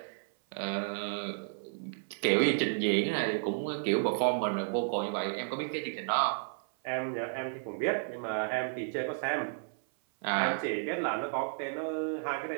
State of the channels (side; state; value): left; silent; 56 dB below the other